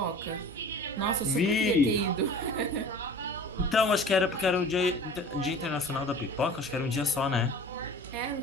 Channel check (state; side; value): normal; both; correlation 0.41